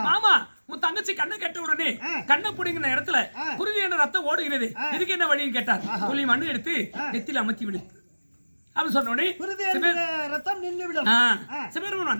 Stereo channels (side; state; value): both; inverted; correlation -1.00